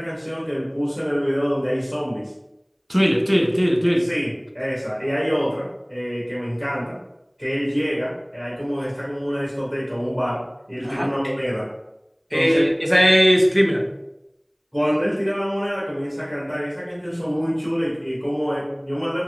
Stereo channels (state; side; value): identical; both; correlation 1.00